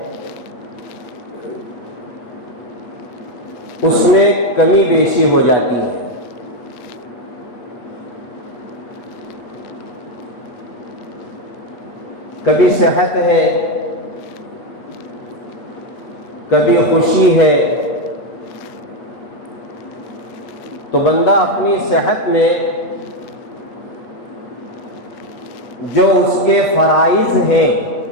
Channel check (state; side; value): late; right; 8.2 ms